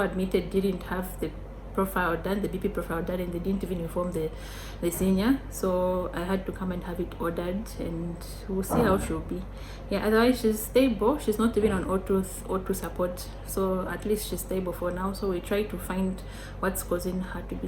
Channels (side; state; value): both; identical; correlation 1.00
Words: admitted didn't have the profile done, the BP profile done, and they didn't even inform the senior, so I had to come and have it ordered, and we'll see how she'll be. Yeah, otherwise she's stable. She's not even on O2 support, so at least she's stable for now. So we try to find what's causing her to be